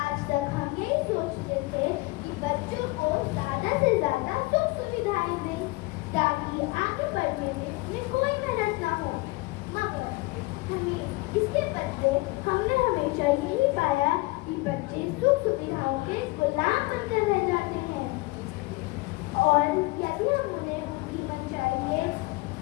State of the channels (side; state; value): right; quieter; 23.2 dB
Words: आज तक हम यही सोचते थे कि बच्चों को ज्यादा से ज्यादा सुख सुविधाएं दें ताकि आगे बढ़ने में उन्हें कोई मेहनत न हो, मगर हमें इसके बदले हमने हमेशा यही पाया कि बच्चे सुख सुविधाओं के गुलाम बनकर रह जाते हैं और यदि हम उन्हें उनकी मनचाही